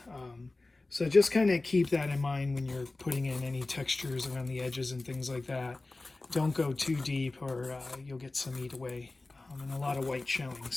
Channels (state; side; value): quieter; right; 3.2 dB